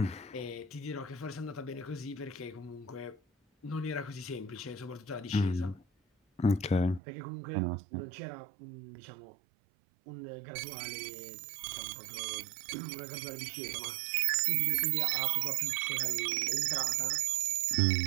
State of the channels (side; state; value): left; drops out; at 7.0 s